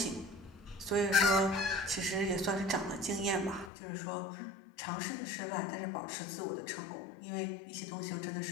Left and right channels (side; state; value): right; drops out; at 3.7 s